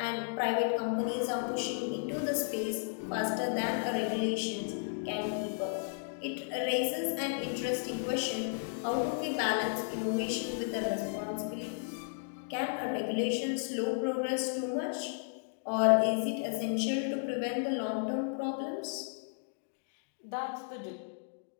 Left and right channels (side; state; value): right; silent; digital silence